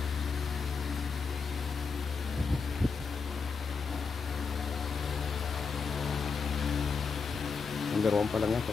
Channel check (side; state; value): right; quieter; 5.2 dB